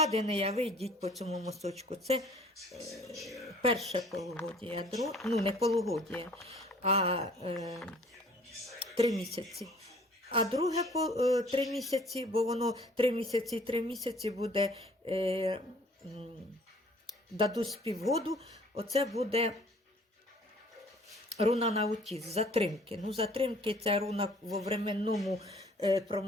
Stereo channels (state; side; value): normal; both; correlation 0.54